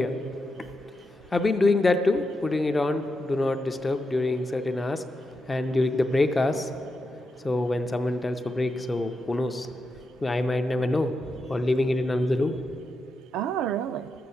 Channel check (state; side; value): normal; both; correlation 0.86